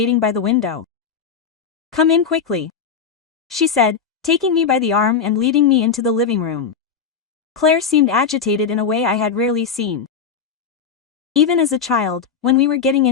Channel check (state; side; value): quieter; right; 6.4 dB